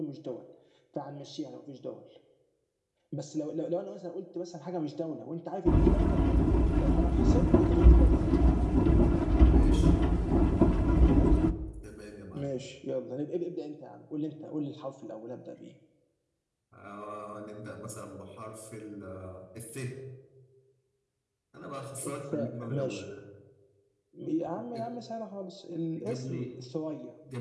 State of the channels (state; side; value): identical; both; correlation 1.00